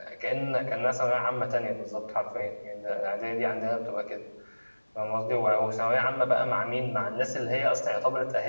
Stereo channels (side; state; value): both; inverted; correlation -1.00